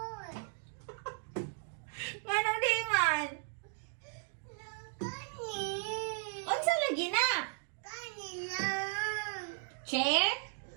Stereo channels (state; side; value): silent; left; 54 dB below the other